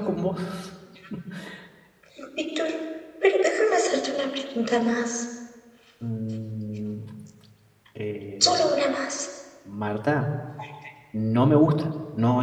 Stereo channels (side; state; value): both; identical; correlation 1.00